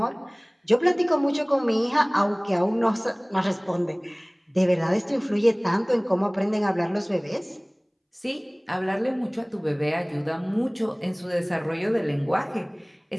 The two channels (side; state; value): both; identical; correlation 1.00